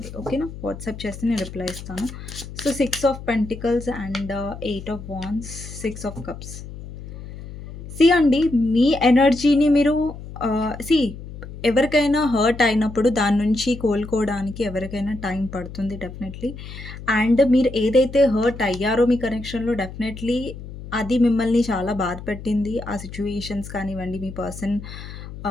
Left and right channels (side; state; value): left; noise; hum, 12 dB below the sound